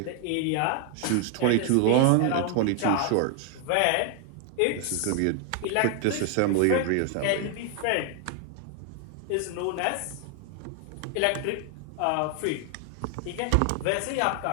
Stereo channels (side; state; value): both; different; correlation 0.00